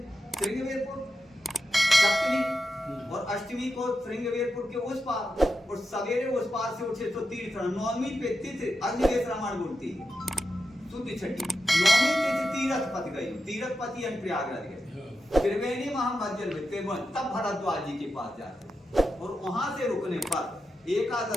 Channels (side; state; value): both; normal; correlation 0.89